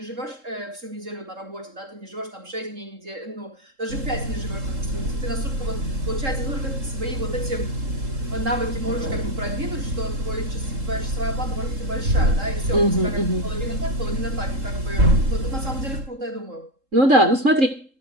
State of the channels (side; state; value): left; late; 3.7 ms